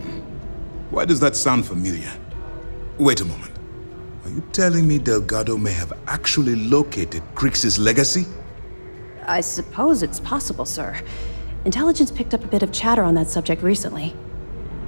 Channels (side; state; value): both; inverted; correlation -1.00